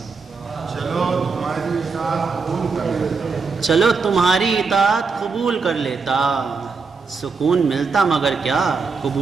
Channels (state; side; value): quieter; left; 4.7 dB